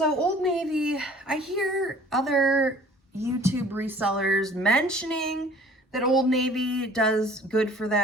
Old Navy, I hear other YouTube resellers mentioning that Old Navy does good for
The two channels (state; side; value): normal; both; correlation 0.51